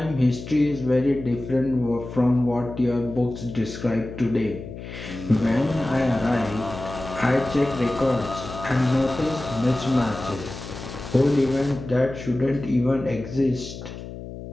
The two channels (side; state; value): left; noise; hum, 11 dB below the sound